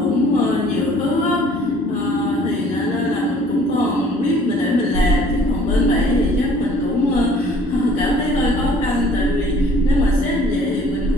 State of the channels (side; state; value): both; normal; correlation 0.55